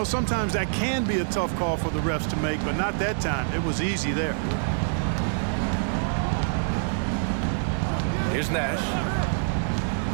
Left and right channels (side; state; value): left; silent; digital silence